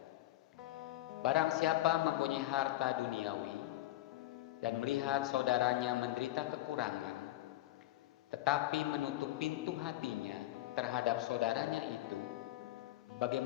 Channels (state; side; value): quieter; right; 15.9 dB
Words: Barang siapa mempunyai harta duniawi dan melihat saudaranya menderita kekurangan, tetapi menutup pintu hatinya terhadap saudaranya itu,